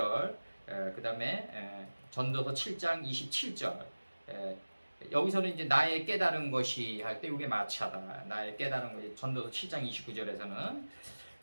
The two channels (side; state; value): both; inverted; correlation -1.00